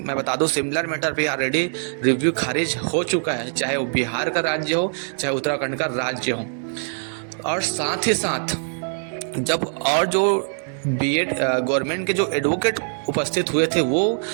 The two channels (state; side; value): silent; left; 64 dB below the other